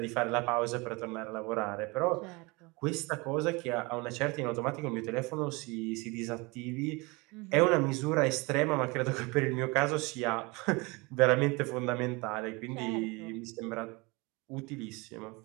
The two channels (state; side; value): quieter; left; 26.1 dB